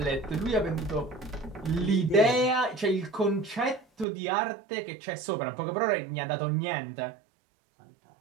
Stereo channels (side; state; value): left; drops out; at 4.0 s